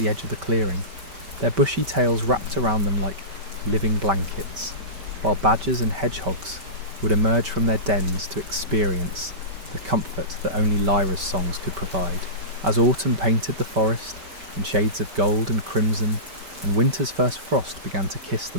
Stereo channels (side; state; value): left; late; 5.2 ms